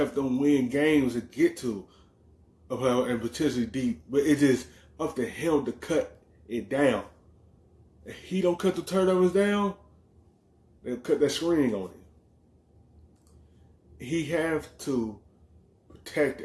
them win games and get to a playoff and potentially deep, but it's just up to him to cut it down. If he don't cut the turnovers down, they'll cut that screen on him. He have to protect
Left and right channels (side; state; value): both; identical; correlation 1.00